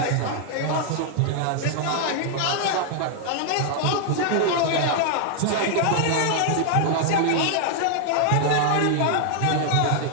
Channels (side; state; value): both; different; correlation 0.00